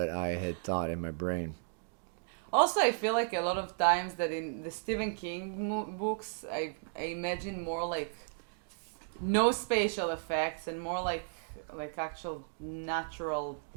I had thought in my brain. Also, I feel like a lot of times that in the Stephen King books, I imagine more like no spatial effects and more like actual natural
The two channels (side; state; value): left; silent; digital silence